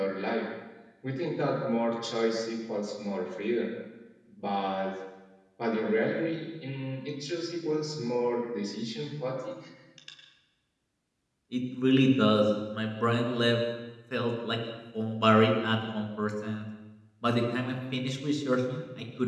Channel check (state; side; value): identical; both; correlation 1.00